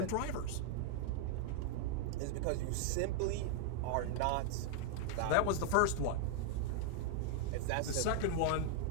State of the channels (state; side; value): different; both; correlation -0.01